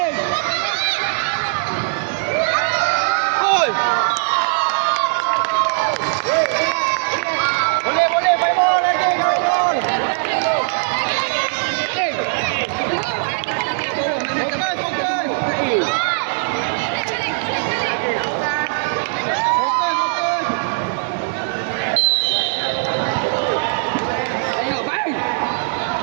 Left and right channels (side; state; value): left; silent; 66 dB below the other